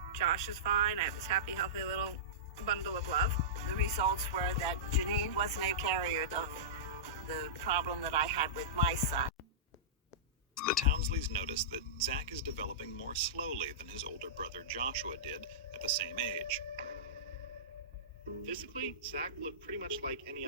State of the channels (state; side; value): normal; both; correlation -0.18